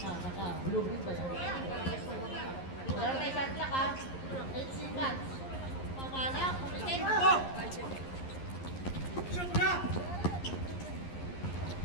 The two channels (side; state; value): right; late; 11 ms